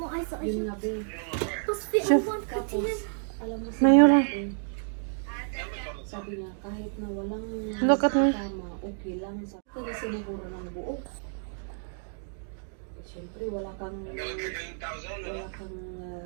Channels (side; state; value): left; silent; 58 dB below the other